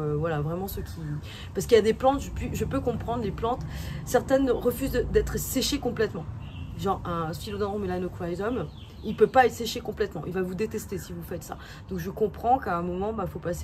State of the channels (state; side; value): identical; both; correlation 1.00